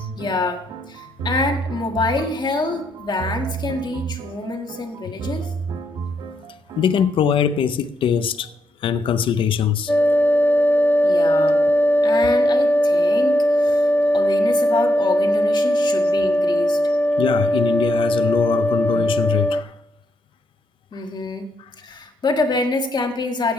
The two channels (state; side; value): normal; both; correlation 0.79